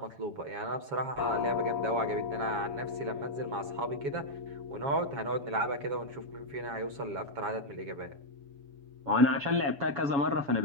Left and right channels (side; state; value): left; late; 7.3 ms